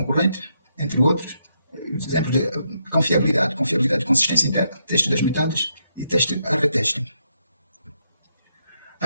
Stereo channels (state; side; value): inverted; both; correlation -0.78